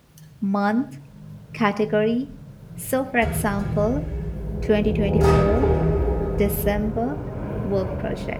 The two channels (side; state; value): both; identical; correlation 1.00